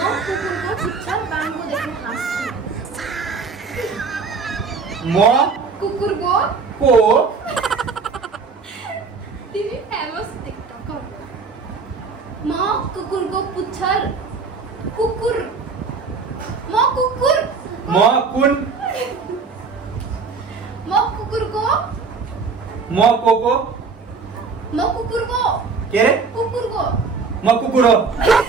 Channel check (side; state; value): left; quieter; 4.8 dB